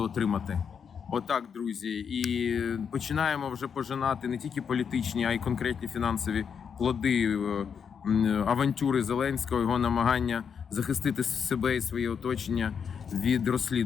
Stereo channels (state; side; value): quieter; right; 6.9 dB